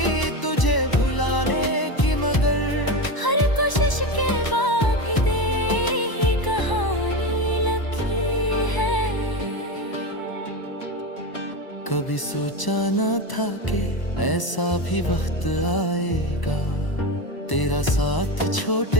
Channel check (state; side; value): late; right; 1.0 ms